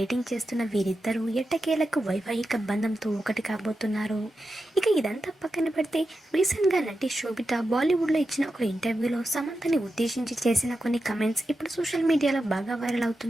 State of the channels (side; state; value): both; normal; correlation 0.90